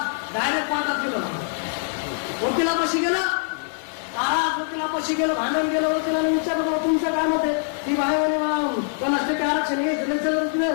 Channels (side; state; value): right; silent; 63 dB below the other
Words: डायरेक्ट पाठात गेलं वकिलापाशी गेलं महाराज वकिलापाशी गेलं भांडण गेलं वकिलाने विचारलं तुमचं काय मत आहे ती बाहेर कोणाष्टके आरक्षण घ्यायचं